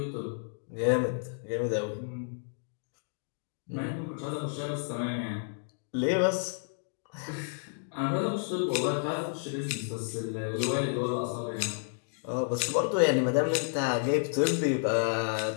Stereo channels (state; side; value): silent; right; digital silence